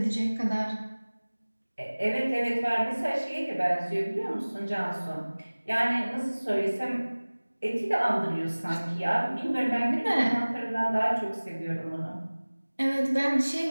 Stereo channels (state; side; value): inverted; both; correlation -1.00